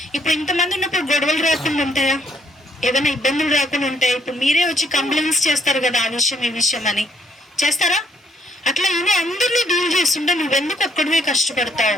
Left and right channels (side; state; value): both; normal; correlation 0.68